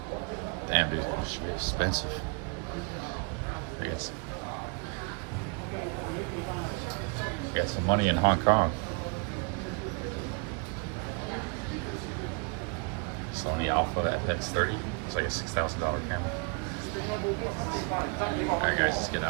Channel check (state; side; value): quieter; left; 35.7 dB